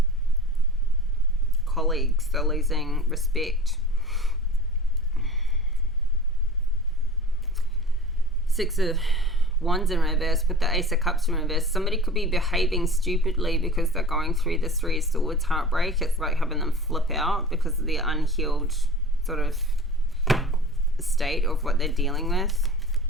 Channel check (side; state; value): both; normal; correlation 0.38